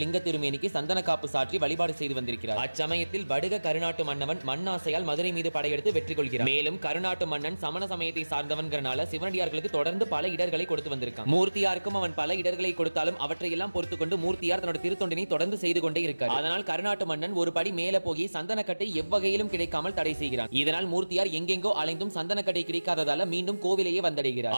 லிங்க திருமேனிக்கு சந்தன காப்பு சாற்றி வழிபாடு செய்து வந்திருக்கிறார். அச்சமயத்தில் வடுக கருநாட்டு மன்னவன் மண்ணாசையால் மதுரை மீது படையெடுத்து வெற்றி கொள்கிறார். மேலும் கருநாட்டு மன்னன் சமண சமயத்தை சார்ந்தவன்கிறனால சிவனடியார்களுக்கு தொடர்ந்து பல இடர்களை கொடுத்து வந்திருக்கான். மூர்த்தியாருக்கும் அவன் பல இடர்களை கொடுத்தாலும் அவற்றையெல்லாம் பொறுத்துக் கொண்டு மூர்த்தியார் தன்னோட திருத்தொண்டினை தொடர்ந்து செய்து கொண்டே இருக்கார். அதனால் கருநாட்டு மன்னன் ஒரு படி மேல போய் சந்தனக்கட்டை எவ்வகையிலும் கிடைக்காமல் தடை செய்கிறான். இதனால் மூர்த்தியார் எங்கெங்கோ அலைந்தும் சந்தனக்கட்டை கிடைக்காததால மீண்டும் கோவிலையே வந்தடைகிறார்.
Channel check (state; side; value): inverted; both; correlation -1.00